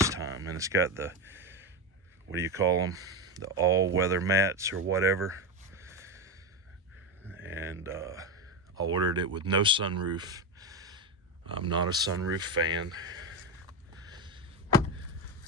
time, and it's got the, what do you call them, the all-weather mats or whatever. And I ordered it with no sunroof. I'm not a sunroof fan.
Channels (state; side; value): normal; both; correlation 0.14